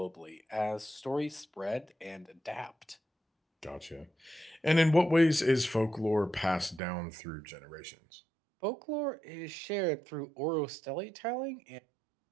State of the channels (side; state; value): left; drops out; at 6.8 s